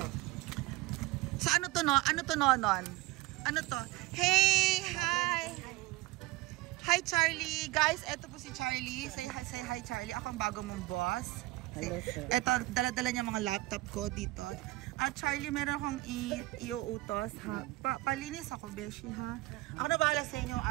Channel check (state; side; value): quieter; left; 20.0 dB